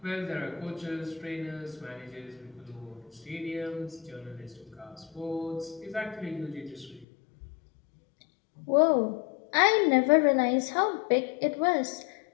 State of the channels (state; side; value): drops out; right; at 7.1 s